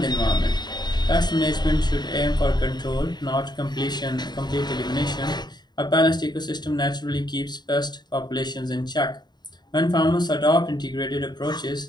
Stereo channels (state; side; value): late; right; 0.21 ms